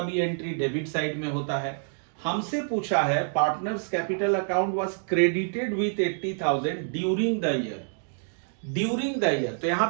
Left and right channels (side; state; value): left; silent; digital silence